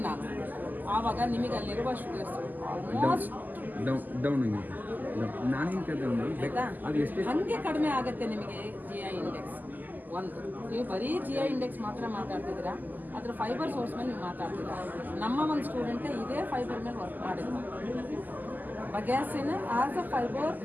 ನಾನು. ಆವಾಗ ನಿಮಗೆ ಅಲ್ಲಿರುವ ಶುಗರ್ಸ್ ಆಲ್ಮೋಸ್ಟ್ ಹಾಗೆ ಕಡಿಮೆ ಆಗುತ್ತೆ ನಿಮಗೆ GI ಇಂಡೆಕ್ಸ್. ಒಂದು ನೀವು ಬರೀ GI ಇಂಡೆಕ್ಸ್ ಮಾತ್ರ ಮಾತಾಡ್ತಿದ್ದೀರಾ. ಅದ್ರ ಫೈಬರ್ ಸೋರ್ಸ್ ಮೇಲೆ ನೀವು ಮಾತಾಡ್ತೀರ. ನಮ್ಮ ಒಂದು ಸ್ಟೂಡೆಂಟೇ ಇದೇ ಫೈಬರ್ ಮೇಲೆ ವರ್ಕ್ ಮಾಡಿದ್ರು. ಬಗ್ಯಾಸಿನ as a fibre,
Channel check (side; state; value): left; late; 0.085 ms